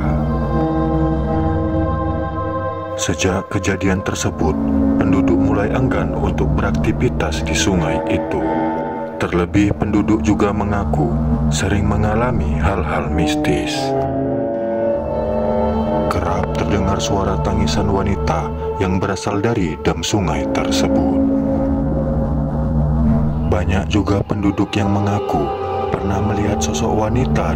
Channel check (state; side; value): identical; both; correlation 1.00